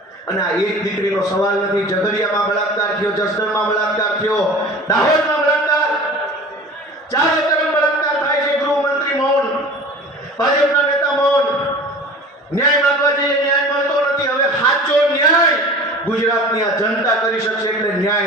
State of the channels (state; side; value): normal; both; correlation 0.40